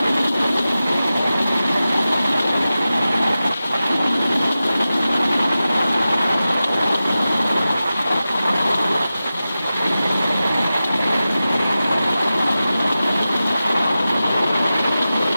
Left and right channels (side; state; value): both; inverted; correlation -0.94